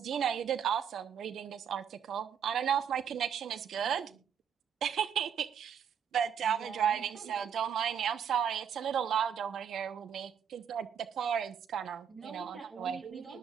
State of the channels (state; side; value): quieter; left; 8.0 dB